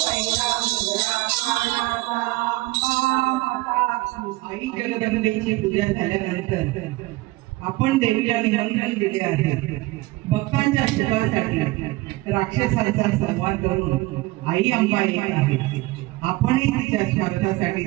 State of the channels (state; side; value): quieter; left; 20.3 dB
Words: मुजरा मानाचा आई जगदंबेची पूजा झाल्यानंतर आपण देवीला निमंत्रण दिले आहे भक्तांच्या सुखासाठी राक्षसांचा संवाद करून आई अंबा येत आहे आपणही तिच्या स्वार्थासाठी